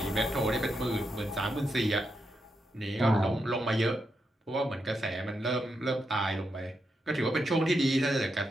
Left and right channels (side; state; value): both; normal; correlation 0.84